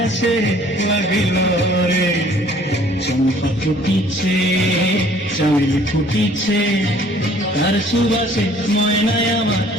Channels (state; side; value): normal; both; correlation 0.56